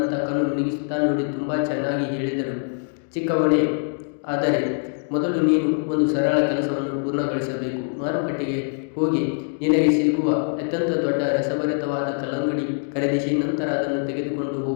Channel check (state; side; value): silent; right; 63 dB below the other